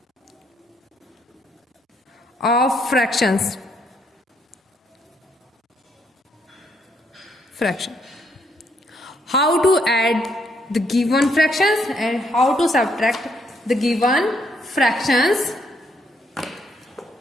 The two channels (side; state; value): both; normal; correlation 0.72